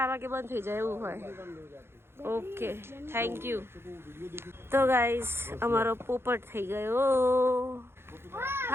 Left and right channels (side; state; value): left; late; 0.12 ms